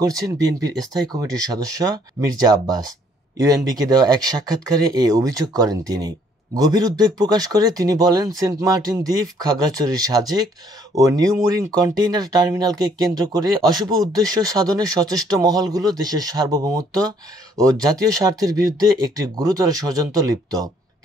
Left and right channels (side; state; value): both; normal; correlation 0.64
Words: করছেন বিএনপির স্থায়ী কমিটির সদস্য মির্জা আব্বাস। ইউএনবিকে দেওয়া এক সাক্ষাৎকারে এই অভিযোগ করেন তিনি। গভীর উদ্বেগ প্রকাশ করে তিনি বলেন, সেন্ট মার্টিন দ্বীপ, খাগড়াছড়ির সাজেক ও নিউ মুরিন কন্টেইনার টার্মিনালকে কেন্দ্র করে অশুভ উদ্দেশ্য সাধনে সচেষ্ট মহলগুলো দেশের সার্বভৌমত্ব ও জাতীয় স্বার্থের বিরুদ্ধে একটি গুরুতর ষড়যন্ত্র লিপ্ত।